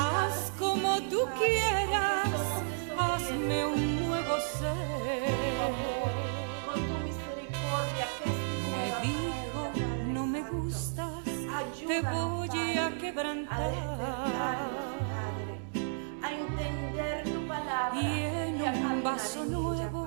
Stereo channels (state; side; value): silent; left; digital silence